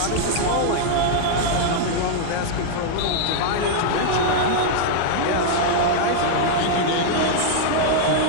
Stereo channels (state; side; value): different; both; correlation -0.01